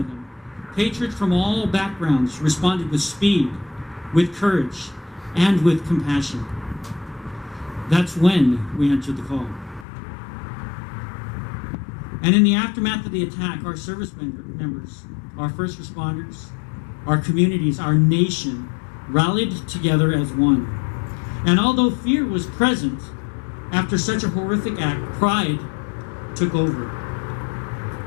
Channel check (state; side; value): drops out; right; at 9.9 s